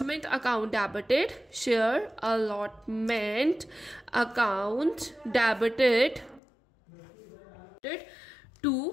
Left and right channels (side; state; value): right; drops out; at 6.4 s